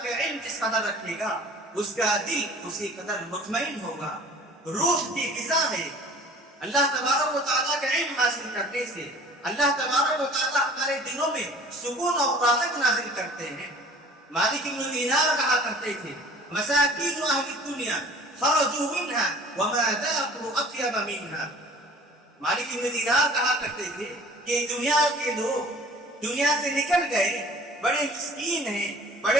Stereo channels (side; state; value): both; normal; correlation 0.47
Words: کا علم جس قدر رکھے گا، اس کا دل اسی قدر مطمئن ہوگا، روح کی غذا ہے۔ اللہ تبارک و تعالیٰ کا علم حاصل کرنے سے اللہ تبارک و تعالیٰ ہمارے دلوں میں سکون اور راحت نازل کرتے ہیں۔ مالک بن دینار کہا کرتے تھے، مساکین اہل الدنیا خرجوا منها وما ذاقوا اطیب منها۔ مالک بن دینار کہا کرتے تھے کہ دنیا کے لوگ دنیا سے نکل گئے، بڑے مسکین ہیں،